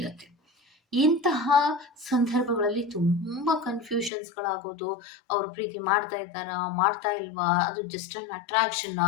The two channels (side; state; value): right; drops out; at 4.1 s